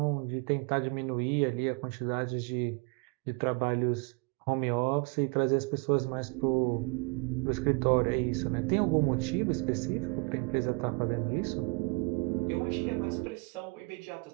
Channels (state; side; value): quieter; left; 31.7 dB